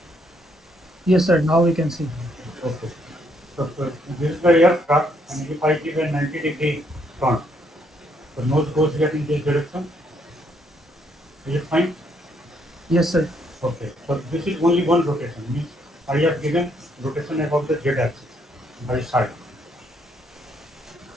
Yes, sir, now we can see. Okay. So this is the aircraft, and if I give a 90-degree turn, the nose goes here in this direction. Is it fine? Yes, sir. Okay. So this is only one rotation. Means I have given rotation about the z-axis by side.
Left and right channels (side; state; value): both; normal; correlation 0.72